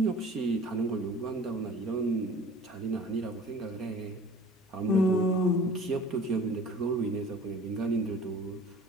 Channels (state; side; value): normal; both; correlation 0.45